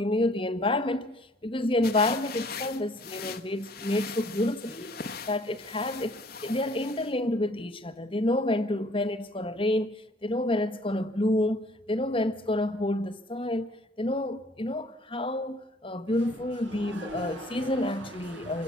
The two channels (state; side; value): normal; both; correlation 0.58